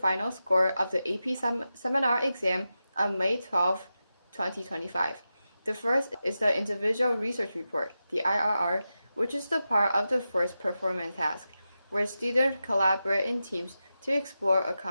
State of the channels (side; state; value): both; inverted; correlation -0.91